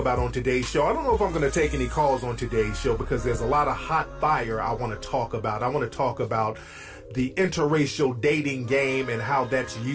on today's show. I don't know if I'm going to take any calls on today's show because there's a lot of hot fire I want to talk about. I want to talk about the interracial dating game and how that's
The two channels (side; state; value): both; identical; correlation 1.00